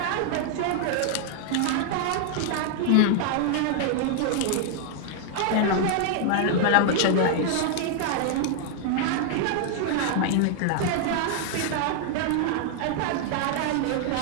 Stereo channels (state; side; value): different; both; correlation 0.00